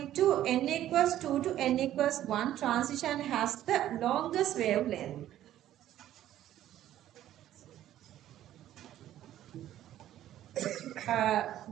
to n equals 2 to n equals 1 transition has the longest wavelength.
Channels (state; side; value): quieter; left; 12.6 dB